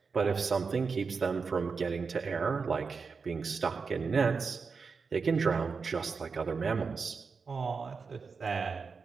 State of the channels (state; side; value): quieter; left; 5.1 dB